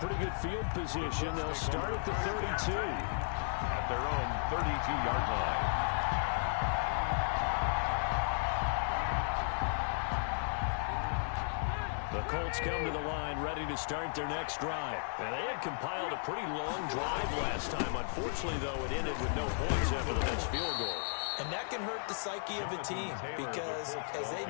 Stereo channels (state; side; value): silent; right; digital silence